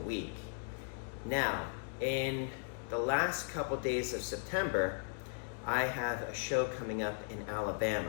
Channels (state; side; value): silent; right; 53 dB below the other